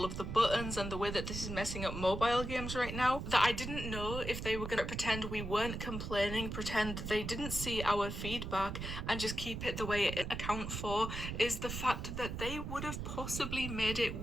of the buttons and the way that this is messing up mobile games right now that I didn't know if they were going to pretend we weren't complaining, pretend they didn't see our feedback and just keep it the way it account for, is the fact that they would have possibly made it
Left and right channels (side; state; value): right; noise; rumble, 5 dB below the sound